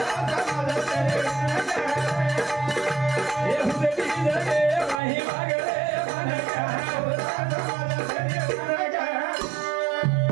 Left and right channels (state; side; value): drops out; left; at 5.0 s